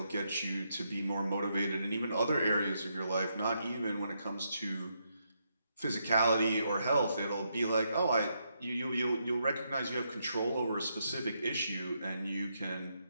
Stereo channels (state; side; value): inverted; both; correlation -0.79